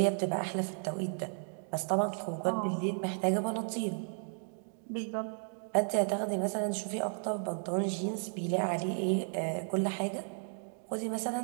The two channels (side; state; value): left; silent; 55 dB below the other